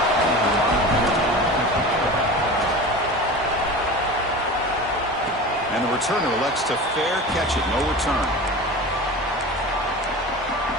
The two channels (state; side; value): normal; both; correlation 0.33